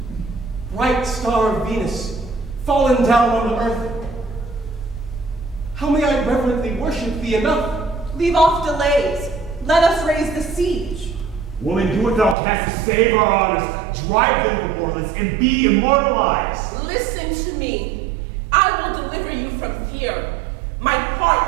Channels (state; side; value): drops out; left; at 12.4 s